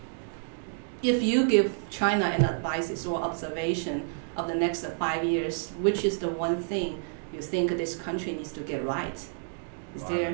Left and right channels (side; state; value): left; silent; digital silence